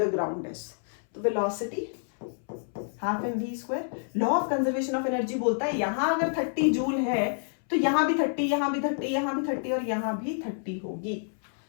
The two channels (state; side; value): silent; right; 59 dB below the other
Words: ground is, तो velocity half M V square. Law of conservation of energy बोलता है यहाँ अगर 30 जूल है तो यहाँ भी 30, यहाँ भी 30, यहाँ भी 30 और यहाँ भी 30 होगी।